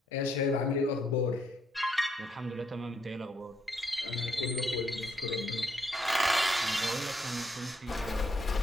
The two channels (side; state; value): both; normal; correlation 0.74